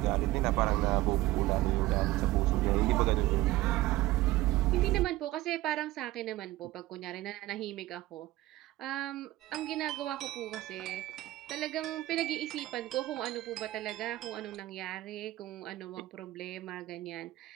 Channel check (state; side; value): quieter; left; 17.2 dB